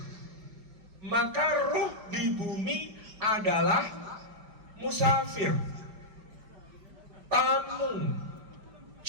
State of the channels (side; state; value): left; late; 5.3 ms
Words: Maka ruh di bumi adalah musafir, tamu,